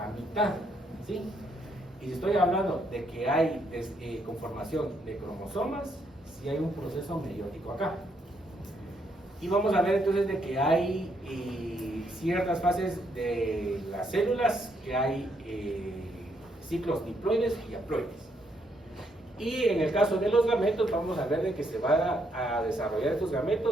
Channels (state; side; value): normal; both; correlation 0.74